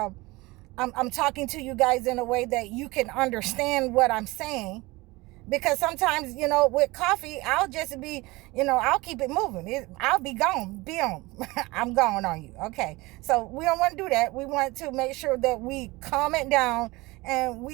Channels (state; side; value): quieter; left; 21.9 dB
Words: I'm talking to you guys in a way that you can understand what I'm saying. Because sometimes, with coffee, I'll just be, I'll keep it moving. I'll be gone. Boom. I'm gone on you. Okay. So we don't want to do that. We want to make sure that we calm it down and